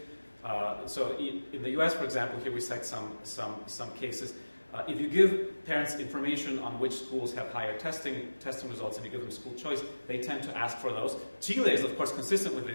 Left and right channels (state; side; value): inverted; both; correlation -1.00